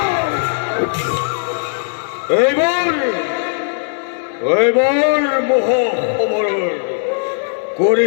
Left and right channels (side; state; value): right; silent; digital silence